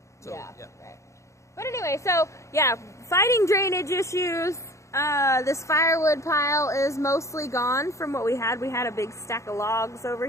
So, right. But anyway, so fighting drainage issues. This firewood pile is mostly gone from what we had. We had a big stack of logs over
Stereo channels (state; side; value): late; right; 0.14 ms